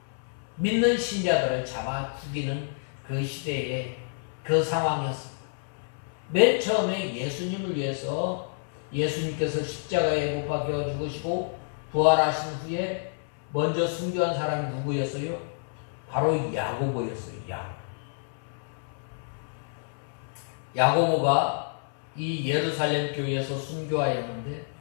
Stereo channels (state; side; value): silent; right; 59 dB below the other